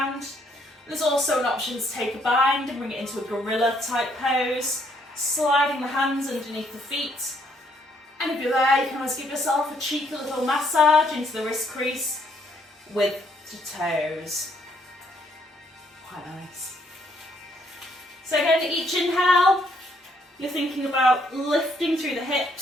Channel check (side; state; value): both; normal; correlation 0.69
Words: There's also an option to take a bind and bring it into a gorilla type pose, sliding the hands underneath the feet. And if you're there, you can always give yourself a cheeky little massage into the wrist crease with the toes. Quite nice. So again, each inhale, you're thinking about lifting through the